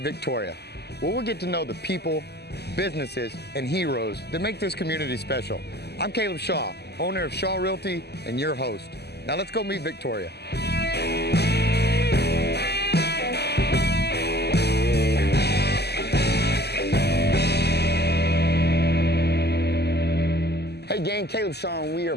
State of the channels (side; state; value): right; late; 0.48 ms